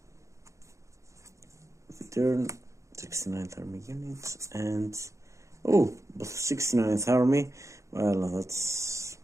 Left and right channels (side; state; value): left; late; 0.15 ms